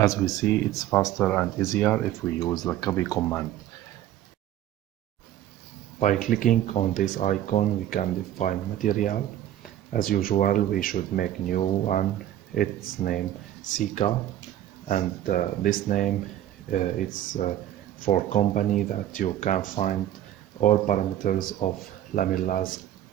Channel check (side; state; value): left; quieter; 12.3 dB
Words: we see, it's faster and easier if we use the copy command. By clicking on this icon, we can define material. As usual, we should make new one. Its name Sika, and this name it's for company that you can find all parameters of Lamellas